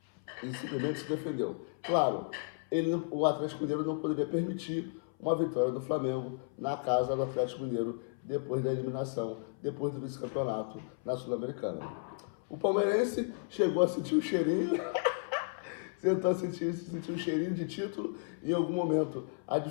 e simplesmente se defendeu. Claro, o Atlético Mineiro não poderia permitir uma vitória do Flamengo na casa do Atlético Mineiro depois da eliminação, depois do vice-campeonato na Sul-Americana. O palmeirense chegou a sentir um cheirinho, tentou sentir um cheirinho de título em algum momento. A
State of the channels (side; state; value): right; silent; 55 dB below the other